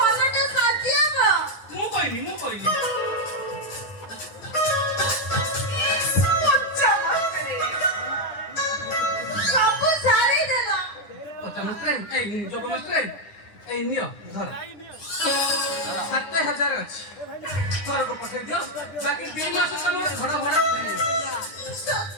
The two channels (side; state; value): right; late; 9.7 ms